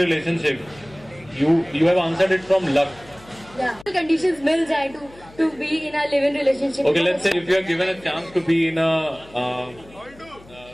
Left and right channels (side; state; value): left; noise; hum, 23 dB below the sound